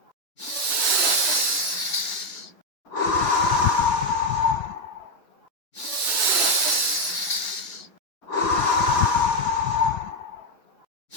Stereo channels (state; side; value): late; right; 3.8 ms